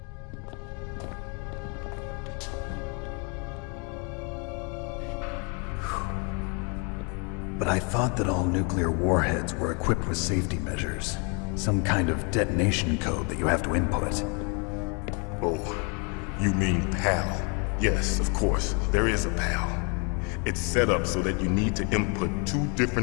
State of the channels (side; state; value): right; quieter; 35.0 dB